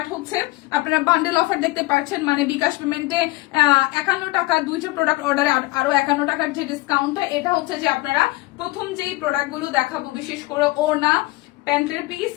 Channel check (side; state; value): right; quieter; 20.7 dB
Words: হচ্ছে আপনারা বান্ডেল অফার দেখতে পাচ্ছেন, মানে বিকাশ পেমেন্টে 51 টাকা, দুইটা প্রোডাক্ট অর্ডারে আরো 51 টাকার যে ডিসকাউন্টটা, এটা হচ্ছে যে আপনারা প্রথম যেই প্রোডাক্ট গুলো দেখাবো বিশেষ করে ওড়না, প্যান্টের পিস,